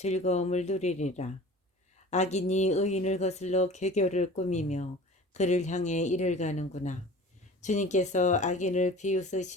누리리라. 악인이 의인을 거슬러 괴교를 꾸미며 그를 향해 이를 가는구나. 주님께서 악인을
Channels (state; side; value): normal; both; correlation 0.42